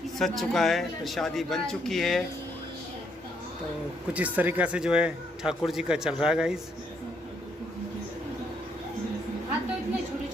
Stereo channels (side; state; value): both; normal; correlation 0.73